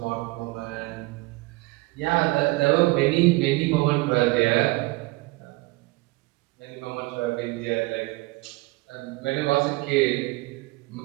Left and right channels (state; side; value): quieter; left; 22.7 dB